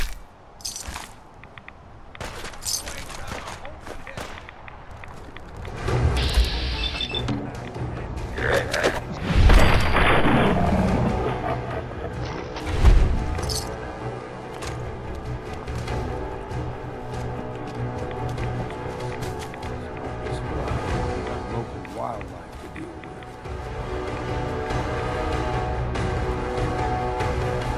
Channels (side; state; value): both; identical; correlation 1.00